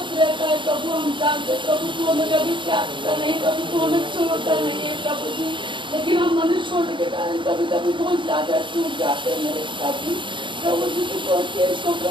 रहता है प्रभु, हम जानते प्रभु तू हमें कभी त्यागता नहीं, कभी तू हमें छोड़ता नहीं है प्रभु जी। लेकिन हम मनुष्य होने के कारण कभी कभी बहुत ज्यादा चूक जाते हैं मेरे पिता जी। प्रभु जी को सोचते इसको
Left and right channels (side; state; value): left; late; 0.23 ms